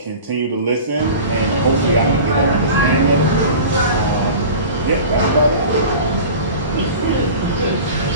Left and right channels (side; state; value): both; inverted; correlation -0.37